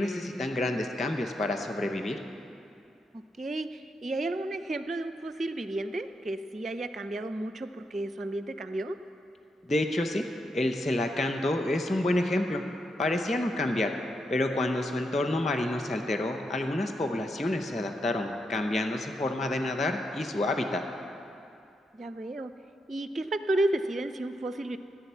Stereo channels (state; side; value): normal; both; correlation 0.82